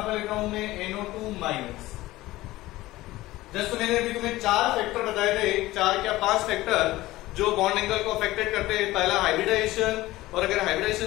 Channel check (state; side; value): quieter; right; 17.6 dB